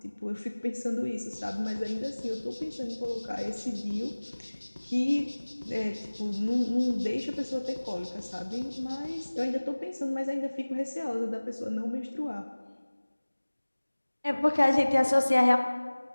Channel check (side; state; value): both; inverted; correlation -1.00